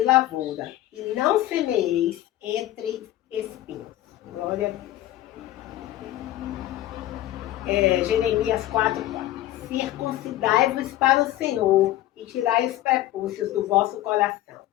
lavoura, e não semeeis entre espinhos. Glória a Deus. Jeremias 4:4. Circuncidai-vos para o Senhor, e tirai os prepúcios do vosso coração,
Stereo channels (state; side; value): quieter; right; 14.5 dB